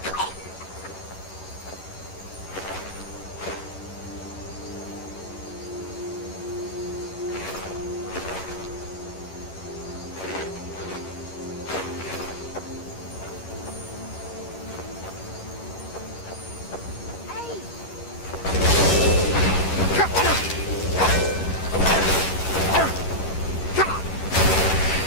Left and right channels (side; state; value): right; late; 11 ms